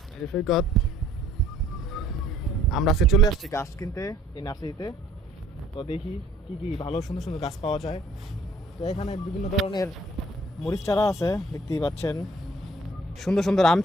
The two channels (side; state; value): both; normal; correlation 0.58